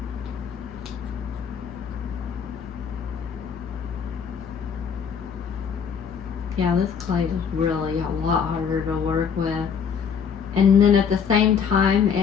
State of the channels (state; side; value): quieter; right; 6.9 dB